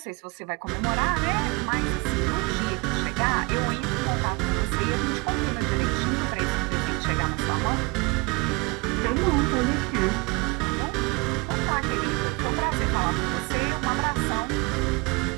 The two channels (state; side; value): quieter; left; 27.8 dB